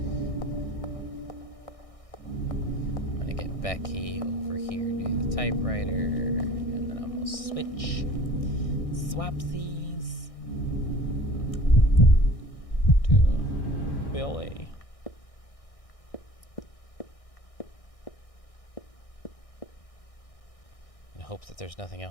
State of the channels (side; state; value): right; late; 1.6 ms